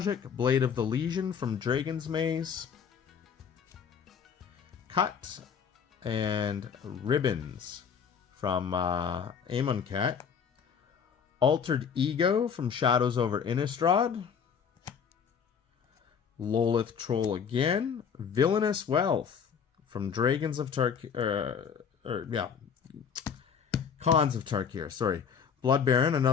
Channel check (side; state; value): right; quieter; 7.0 dB